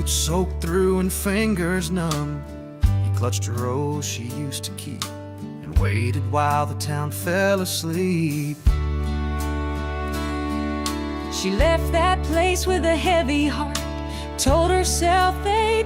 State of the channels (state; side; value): identical; both; correlation 1.00